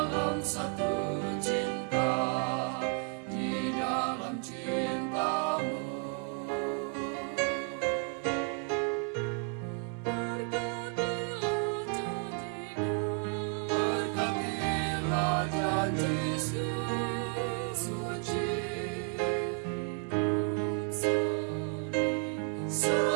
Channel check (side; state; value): left; quieter; 35.9 dB